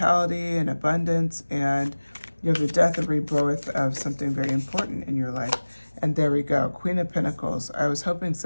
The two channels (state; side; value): inverted; both; correlation -1.00